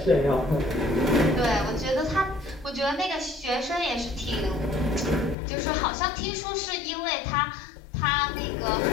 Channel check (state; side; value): drops out; right; at 5.4 s